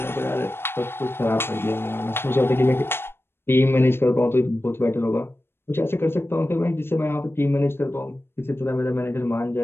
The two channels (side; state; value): right; late; 0.11 ms